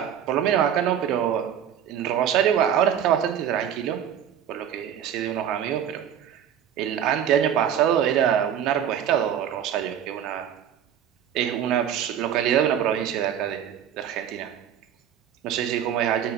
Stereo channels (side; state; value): left; quieter; 9.4 dB